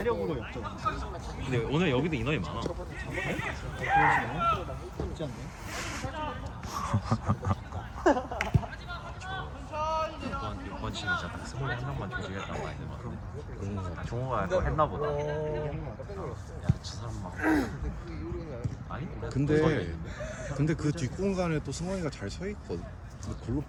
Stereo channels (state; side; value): identical; both; correlation 1.00